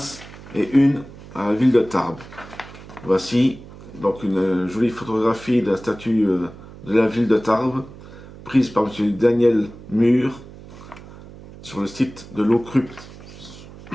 et une à la ville de Tarbes. Voici donc une jolie photographie de la statue de la ville de Tarbes, prise par M. Daniel Mur sur le site de l'Ocrupt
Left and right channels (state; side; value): noise; right; hum, 17 dB below the sound